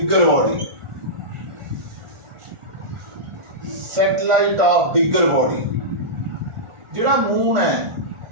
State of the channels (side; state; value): left; late; 1.4 ms